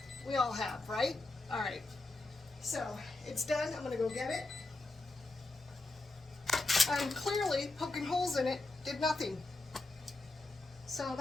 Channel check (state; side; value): quieter; right; 3.0 dB